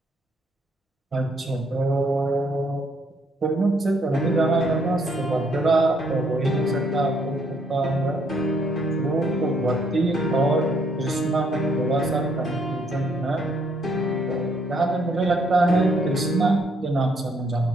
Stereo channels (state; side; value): normal; both; correlation 0.70